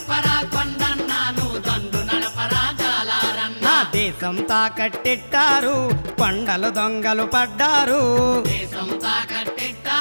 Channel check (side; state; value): both; inverted; correlation -1.00